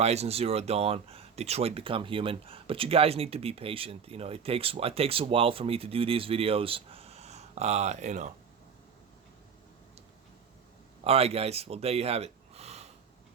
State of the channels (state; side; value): quieter; left; 6.6 dB